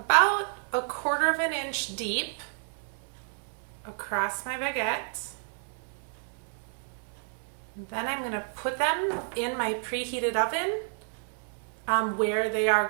1/4 inch deep across my baguette. Then I'm going to put them in my preheated oven where they are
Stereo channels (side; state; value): left; silent; 58 dB below the other